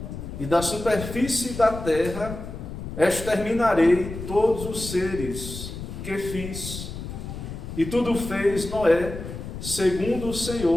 e da superfície da terra exterminarei todos os seres que fiz. E tudo fez Noé, segundo o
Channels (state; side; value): noise; left; rumble, 9 dB below the sound